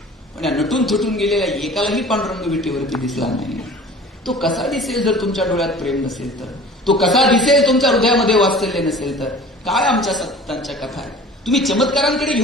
पण या नटून थटून गेलेल्या एकालाही पांडुरंग विटेवरती दिसला नाही. तो कसा दिसेल जर तुमच्या डोळ्यात प्रेम नसेल तर? तो कसा दिसेल तुमच्या हृदयामध्ये वात्सल्य नसेल तर? काय आमच्या संतांच्या कथा आहे. तुम्ही चमत्कारांकडे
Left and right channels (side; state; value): both; normal; correlation 0.43